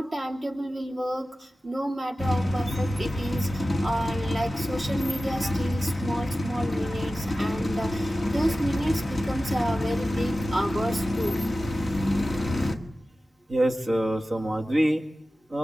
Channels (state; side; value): normal; both; correlation 0.95